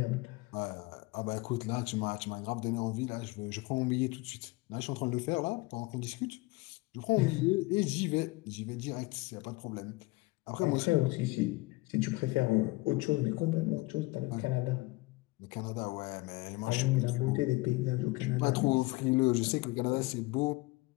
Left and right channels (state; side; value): quieter; right; 22.5 dB